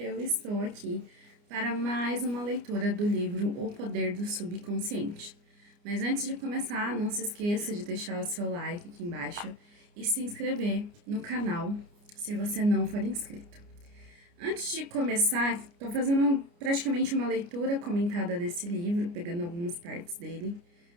estou aqui para mais uma leitura do livro O Poder do Subconsciente. Mas antes de começar, não se esqueça de deixar o seu like aqui embaixo e se inscrever no canal se você não for inscrito. Antes de começar, estou fazendo praticamente uma leitura comentada desse livro, pegando algumas partes dele,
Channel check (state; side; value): late; left; 29 ms